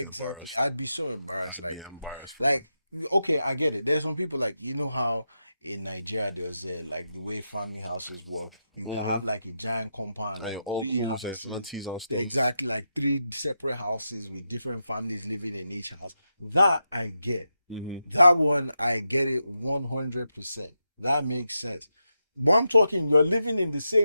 embarrassed. I'd be so embarrassed. Yeah, embarrassed. Like, okay, I get it. There's some people, like, how in Nigeria there's like the way family houses work. You can Mm-hmm. have like a giant compound, And like your three uncles and houses. aunties and stuff. Exactly, like three separate houses with different families living in each house. That I get. Mm-hmm. That one I get it 100%. That makes sense. But I'm talking, you're living in the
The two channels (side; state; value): both; inverted; correlation -0.87